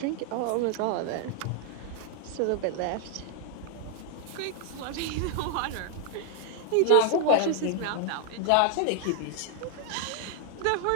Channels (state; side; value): different; both; correlation 0.00